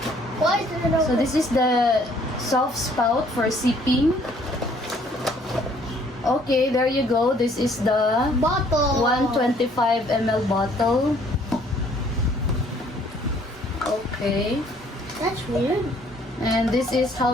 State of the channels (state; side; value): normal; both; correlation 0.61